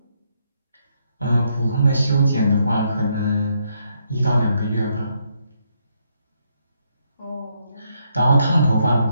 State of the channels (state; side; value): inverted; both; correlation -0.76